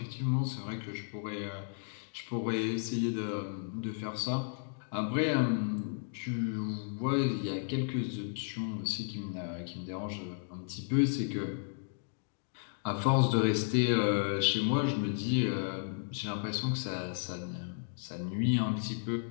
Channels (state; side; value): silent; right; digital silence